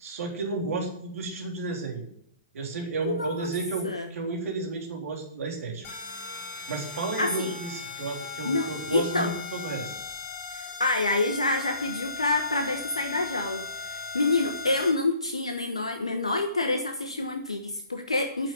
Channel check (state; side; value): inverted; both; correlation -0.53